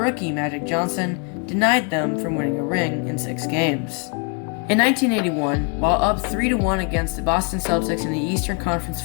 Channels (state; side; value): quieter; right; 33.9 dB